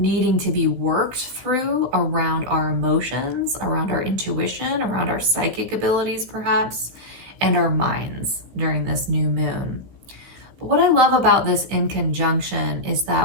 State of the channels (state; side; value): late; left; 16 ms